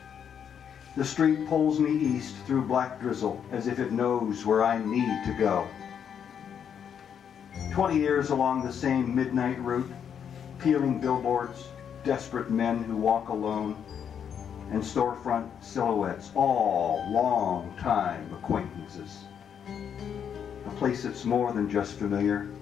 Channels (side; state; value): right; quieter; 8.1 dB